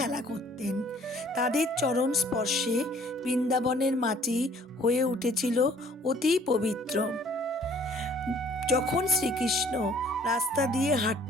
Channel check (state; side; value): normal; both; correlation 0.56